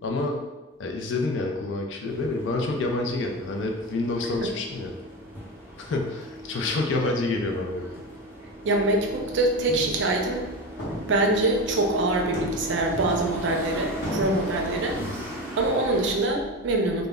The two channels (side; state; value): both; normal; correlation 0.23